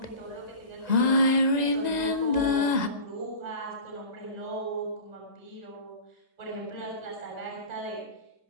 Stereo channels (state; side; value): late; left; 2.0 ms